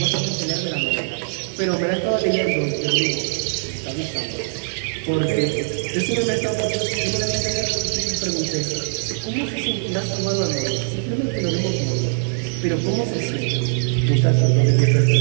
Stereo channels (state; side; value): silent; left; digital silence